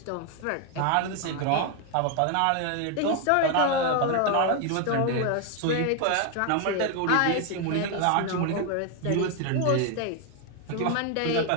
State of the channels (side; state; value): both; different; correlation 0.01